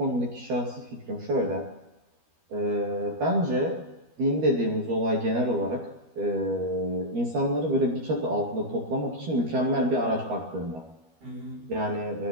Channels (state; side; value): late; left; 13 ms